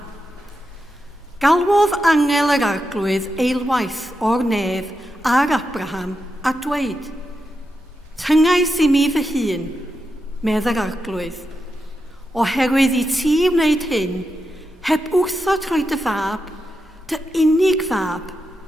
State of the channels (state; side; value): normal; both; correlation 0.87